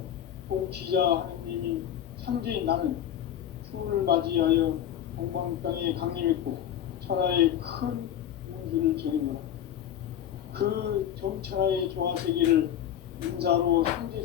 통치자 하느님인 상제인 나는 추운을 맞이하여 동방 땅에 강림했고 천하의 큰 운수를 전이노라. 그 정천하의 조화세계를 인사로 상제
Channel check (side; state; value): right; quieter; 10.5 dB